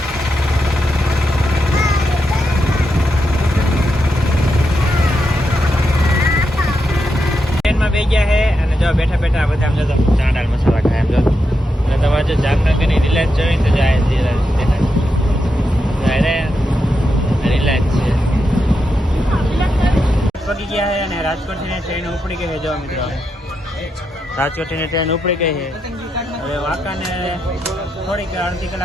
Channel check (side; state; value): both; normal; correlation 0.85